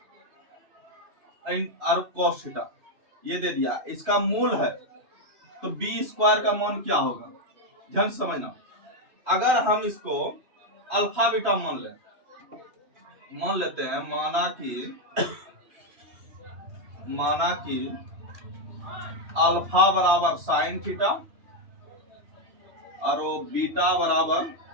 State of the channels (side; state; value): left; late; 2.5 ms